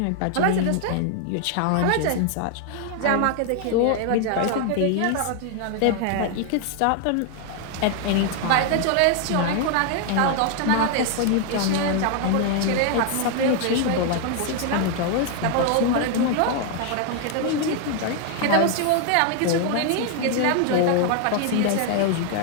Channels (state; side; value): different; both; correlation 0.00